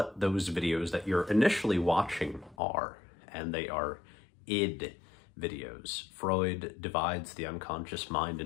those videos that you're initially watching are, and they are id videos. Freud divides the unconscious mind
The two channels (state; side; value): drops out; right; at 2.6 s